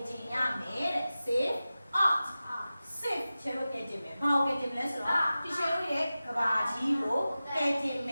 တင်ရမယ်တဲ့ save art save ခြေလို့ကဲတင်မယ်ဘာကိုကဲတင်မလဲဆိုတော့ဒီခြေလို့ရဲ့ကဘာကြီးကိုကဲတင်မ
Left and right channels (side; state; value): both; inverted; correlation -0.95